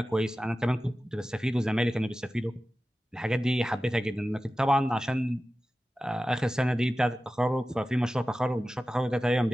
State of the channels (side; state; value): both; normal; correlation 0.95